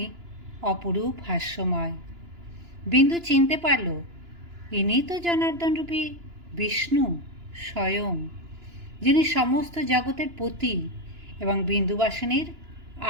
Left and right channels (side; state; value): left; late; 2.9 ms